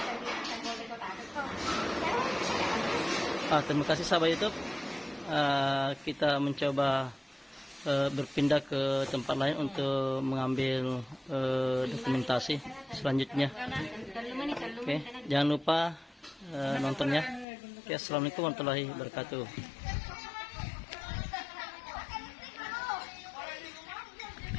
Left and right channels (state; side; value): drops out; right; at 17.4 s